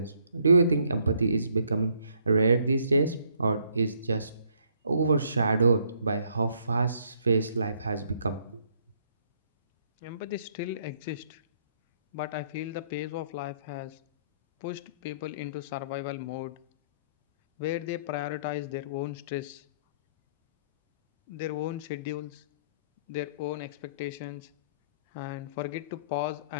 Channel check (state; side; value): inverted; both; correlation -0.67